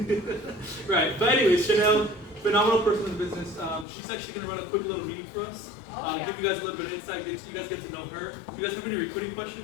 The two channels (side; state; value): right; drops out; at 3.9 s